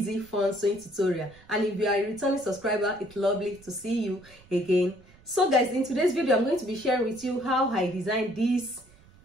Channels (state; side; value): noise; right; rumble, 26 dB below the sound